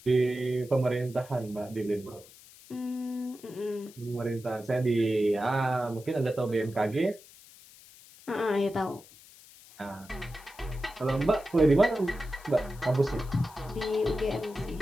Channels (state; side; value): noise; left; hiss, 22 dB below the sound